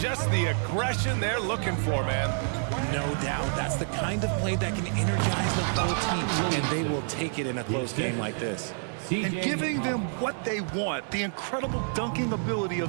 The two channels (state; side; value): silent; left; digital silence